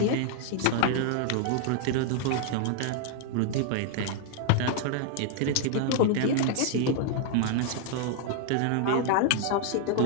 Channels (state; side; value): different; both; correlation 0.00